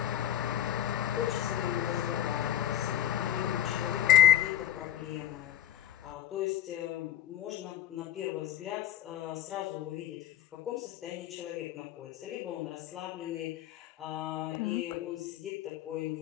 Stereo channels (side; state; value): right; quieter; 11.6 dB